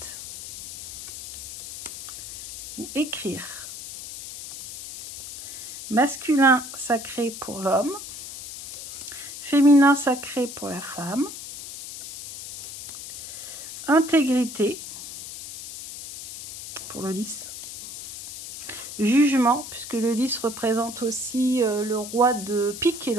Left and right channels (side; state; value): left; noise; hiss, 11 dB below the sound